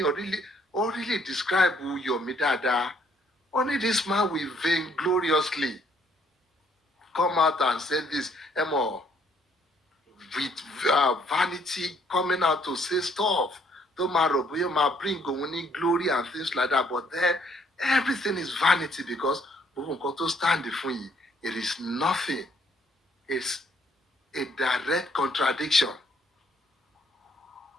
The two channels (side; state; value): both; normal; correlation 0.67